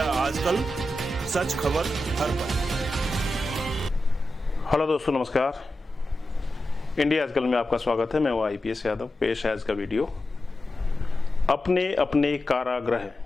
आजकल, सच खबर हर पल। हेलो दोस्तों, नमस्कार। इंडिया आजकल में आपका स्वागत है। मैं हूं IPS यादव। पेश है आज का वीडियो, अपने अपने कारागृह।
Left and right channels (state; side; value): normal; both; correlation 0.91